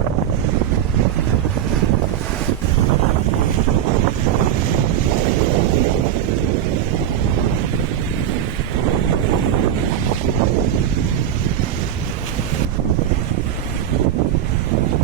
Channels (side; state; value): left; quieter; 10.2 dB